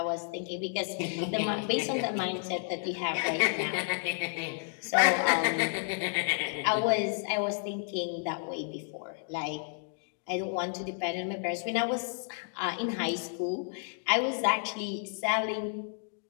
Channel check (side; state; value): right; silent; 57 dB below the other